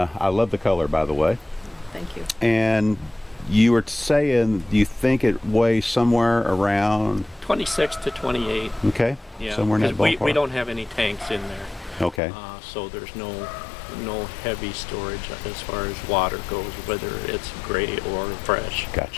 love the color, by the way. Thank you. And you were saying you think it weighs somewhere around, 26 to 28. okay, Yeah. somewhere in that 'Cause ballpark. we don't have any tanks in there, Okay. so there's no heavy storage as far as water goes, whether it's gray or fresh.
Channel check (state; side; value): drops out; right; at 12.2 s